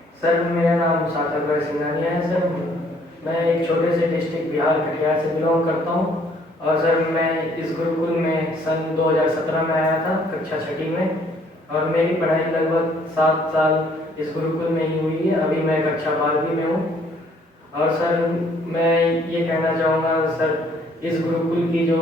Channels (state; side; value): normal; both; correlation 0.63